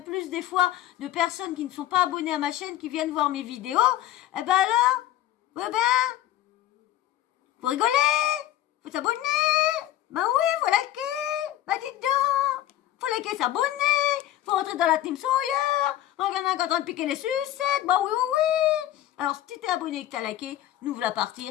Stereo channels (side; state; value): right; quieter; 13.4 dB